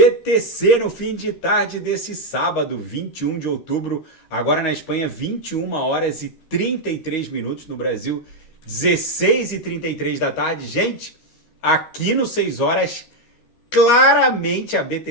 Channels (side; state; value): right; late; 13 ms